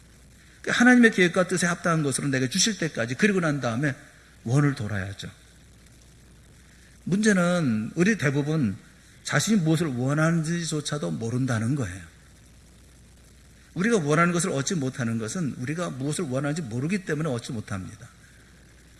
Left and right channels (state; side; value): identical; both; correlation 1.00